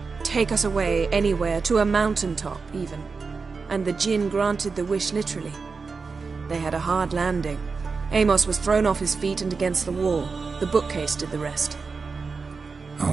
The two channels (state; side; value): quieter; left; 4.7 dB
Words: "Take us away, anywhere, to a mountaintop, even." And the Jinn granted the wish literally. They had a hard landing. Amos was thrown off his feet and against the wall. The bookcase did the rest.